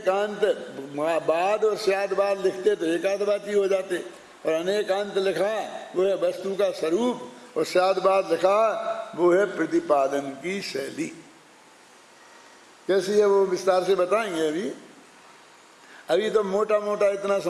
बाद और स्यादवाद लिखते तो एकाध बात ही हो जाते, और अनेकांत लिखा वो है वस्तु का स्वरूप, और स्यादवाद लिखा वो है प्रतिपादन की शैली। कैसी है वो विस्तार से बताएंगे। अभी तो मोटा मोटा इतना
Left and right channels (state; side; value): identical; both; correlation 1.00